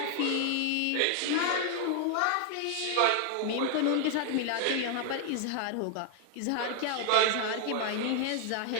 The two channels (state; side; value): different; both; correlation 0.00